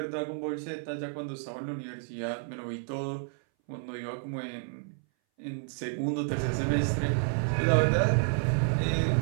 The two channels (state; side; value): silent; left; 58 dB below the other